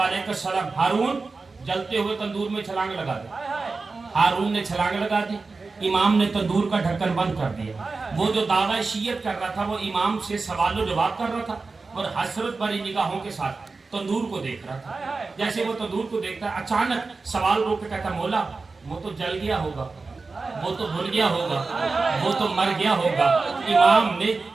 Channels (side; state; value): left; quieter; 4.0 dB